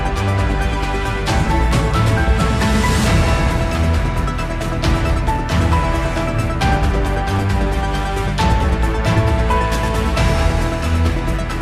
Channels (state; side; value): identical; both; correlation 1.00